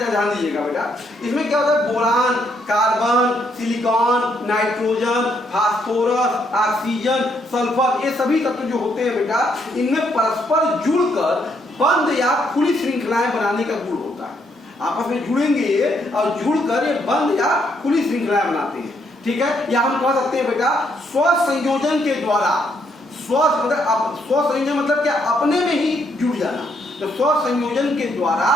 ध्यान दीजिएगा बेटा। इसमें क्या होता है, boron, carbon, silicon, nitrogen, phosphorus, oxygen, sulphur, ये सभी तत्व जो होते हैं बेटा, इनमें परस्पर जुड़कर बंद या खुली श्रृंखलाएं बनाने का गुण होता है। आपस में जुड़ेंगे और जुड़कर ये बंद या खुली श्रृंखलाएं बनाते हैं, ठीक है। या हम कह सकते हैं बेटा स्वसंयोजन के द्वारा, स्वसंयोजन मतलब क्या, अपने में ही जुड़ जाना। तो स्वसंयोजन के द्वारा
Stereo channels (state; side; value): normal; both; correlation 0.73